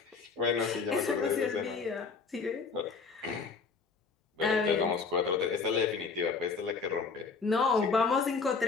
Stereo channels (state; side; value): quieter; right; 5.0 dB